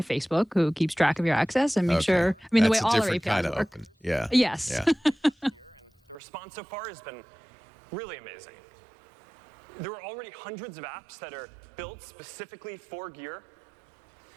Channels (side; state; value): left; drops out; at 6.2 s